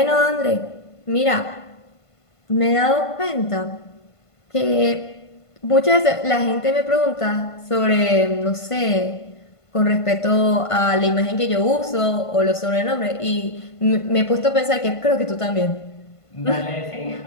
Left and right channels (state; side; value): late; right; 1.5 ms